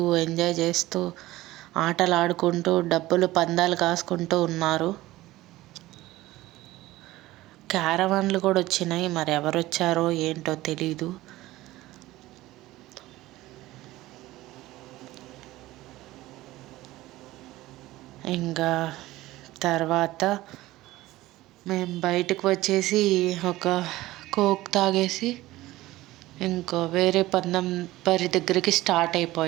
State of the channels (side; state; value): left; quieter; 17.3 dB